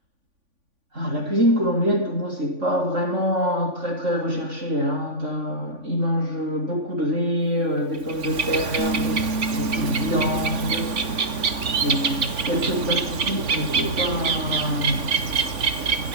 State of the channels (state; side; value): late; left; 3.5 ms